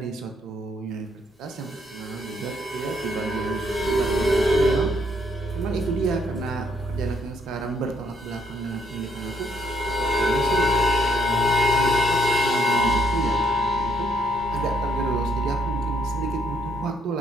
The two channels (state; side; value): normal; both; correlation 0.70